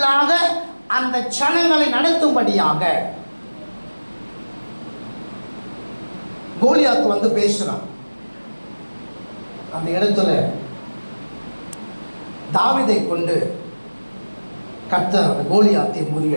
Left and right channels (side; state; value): both; inverted; correlation -1.00